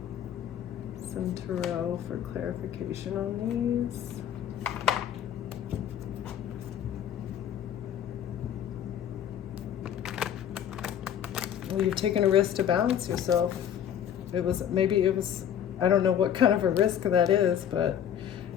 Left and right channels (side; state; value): right; quieter; 9.6 dB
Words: some tarot for clarification on these? Well, you've taken a risk to balance yourself. Maybe it was, I don't know what kind of a risk that is, but